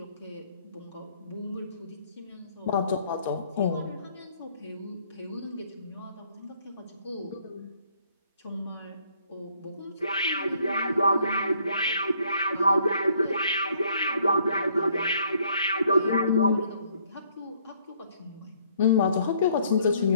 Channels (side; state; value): both; inverted; correlation -0.64